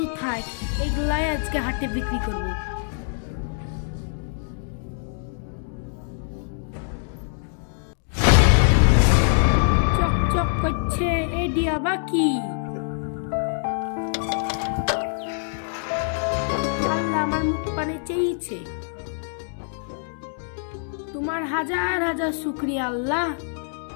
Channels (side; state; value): right; silent; digital silence